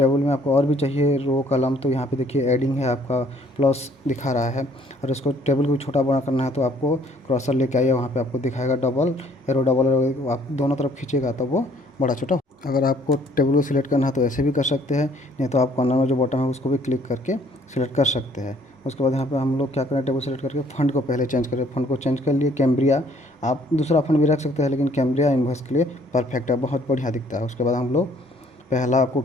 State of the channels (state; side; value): normal; both; correlation 0.61